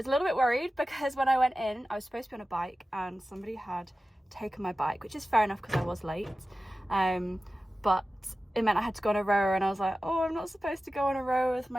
a little bit worried because when I went in I was supposed to be on a bike and somebody had taken my bike, which is fair enough because I was late, but it meant I had to go on a rower, and I was like, oh, I'm not supposed to go on a rower with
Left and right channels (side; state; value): both; normal; correlation 0.95